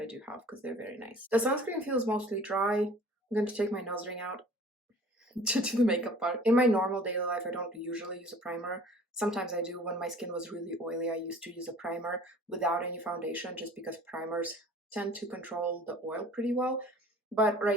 do have because they're very nice. The sunscreen feels mostly dry. I'm going to take my nose ring out to do the makeup part. In my normal daily life, I don't usually use a primer. Sometimes I do. When my skin was really oily, I used to use a primer without any foundation just because primers tend to control the oil pretty well. But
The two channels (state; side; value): normal; both; correlation 0.48